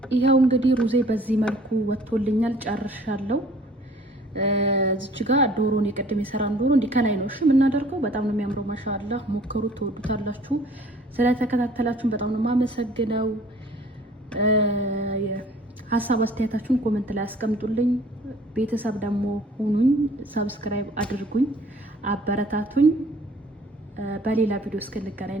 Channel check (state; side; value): normal; both; correlation 0.53